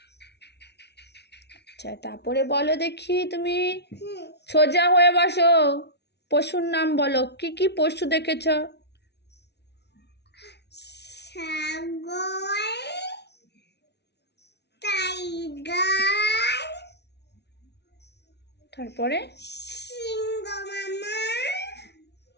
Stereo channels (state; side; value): late; right; 0.49 ms